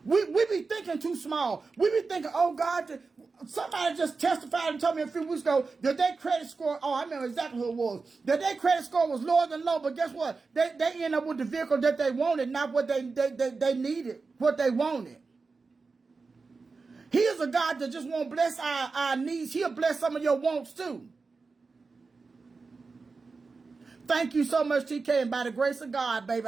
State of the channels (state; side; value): quieter; left; 4.3 dB